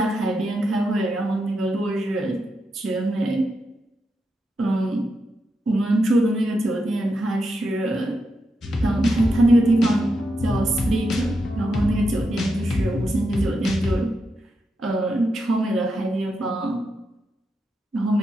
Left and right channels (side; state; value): both; normal; correlation 0.85